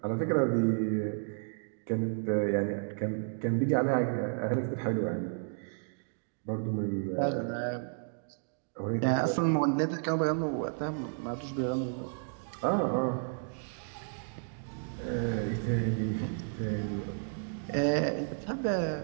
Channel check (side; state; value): left; silent; 56 dB below the other